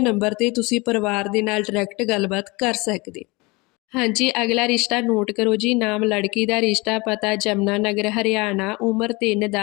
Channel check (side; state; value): right; quieter; 25.2 dB